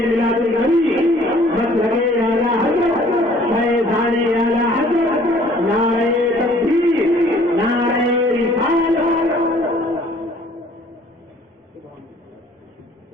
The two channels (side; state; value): both; normal; correlation 0.56